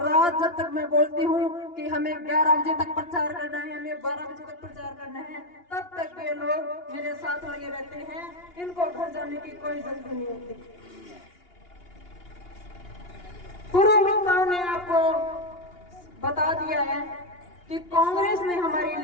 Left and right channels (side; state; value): right; late; 2.8 ms